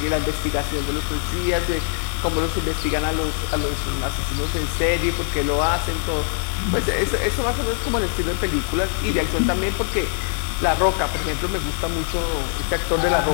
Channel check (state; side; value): silent; right; digital silence